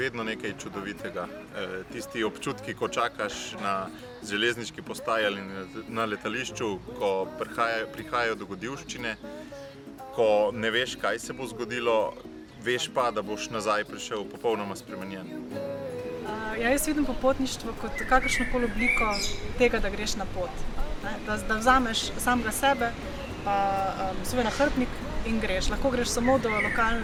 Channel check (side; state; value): both; identical; correlation 1.00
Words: nekaj čudovitega. Tisti občutki, ko čakaš na železniški postaji ali na letališču, ko prihajajo dogodivščine, ko ne veš, kaj se bo zgodilo, veš pa, da boš nazaj prišel popolnoma spremenjen. Jaz vidim popotništvo kot kakršnokoli obliko tega, da greš na pot. Da vzameš samega sebe, pa svoj nahrbtnik in greš. Lahko greš samo do